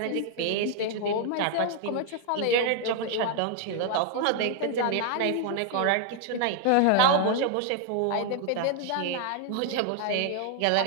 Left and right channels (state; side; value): different; both; correlation 0.00